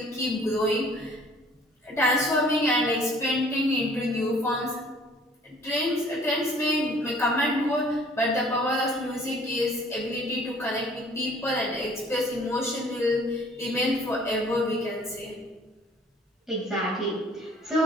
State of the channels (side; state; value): both; normal; correlation 0.55